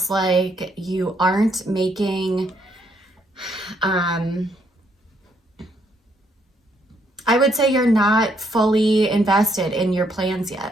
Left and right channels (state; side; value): normal; both; correlation 0.72